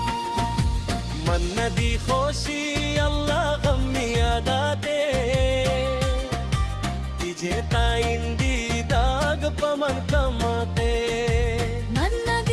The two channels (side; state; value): both; identical; correlation 1.00